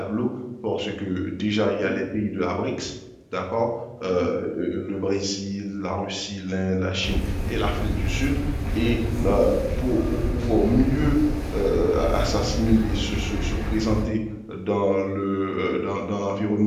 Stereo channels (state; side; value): identical; both; correlation 1.00